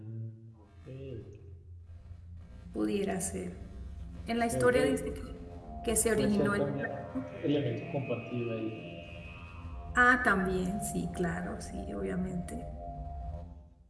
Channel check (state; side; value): identical; both; correlation 1.00